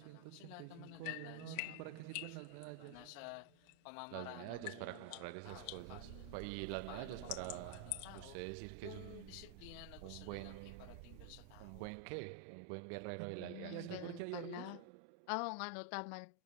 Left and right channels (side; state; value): both; different; correlation 0.00